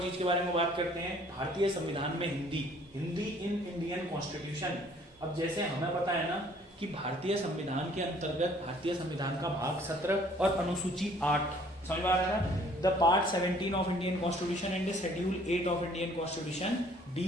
चीज के बारे में बात करते हैं, भारतीय संविधान में Hindi, Hindi in Indian constitution. अब जैसे हमें पता है ना कि भारतीय संविधान के अंतर्गत भारतीय संविधान का भाग 17 और अनुसूची 8, समझ में आ रहा है ना? The part 17 of Indian constitution and schedule 8 of Indian constitution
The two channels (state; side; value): normal; both; correlation 0.58